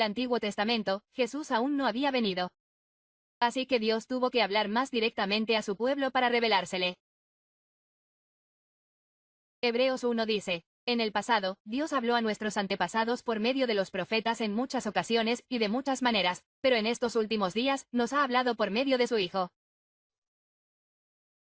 Antiguo Testamento, Jesús aún no había venido. Así que Dios tuvo que hablar más directamente a su pueblo para revelársele. Hebreos 1 dice: en el pasado, Dios habló a nuestros antepasados por medio de los profetas en muchas ocasiones y de muchas maneras, pero en estos últimos días, nos ha hablado por medio de su Hijo.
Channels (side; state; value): both; identical; correlation 1.00